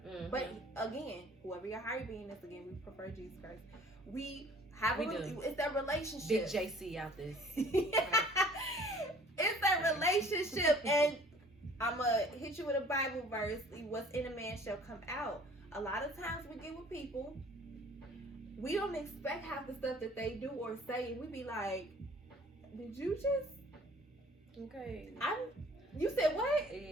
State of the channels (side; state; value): both; normal; correlation 0.52